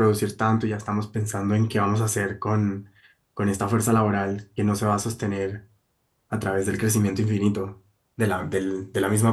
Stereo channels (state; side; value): identical; both; correlation 1.00